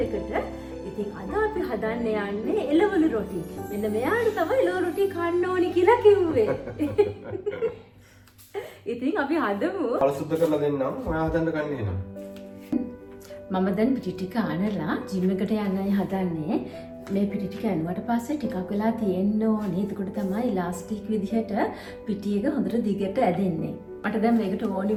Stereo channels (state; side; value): identical; both; correlation 1.00